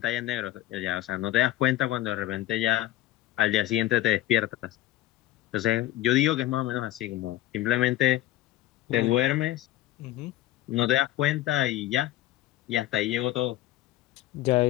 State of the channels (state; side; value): quieter; right; 14.9 dB